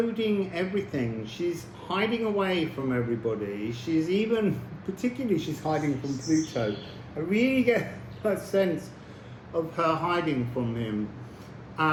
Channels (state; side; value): identical; both; correlation 1.00